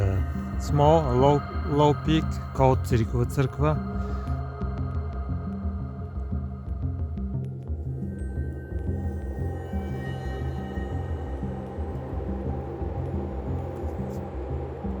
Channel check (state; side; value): identical; both; correlation 1.00